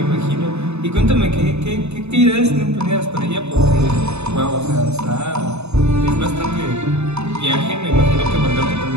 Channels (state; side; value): late; left; 0.81 ms